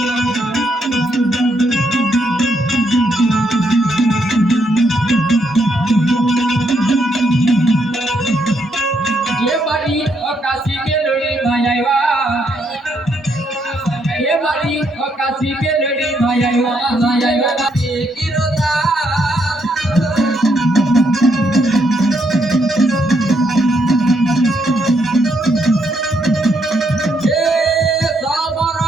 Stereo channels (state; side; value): normal; both; correlation 0.75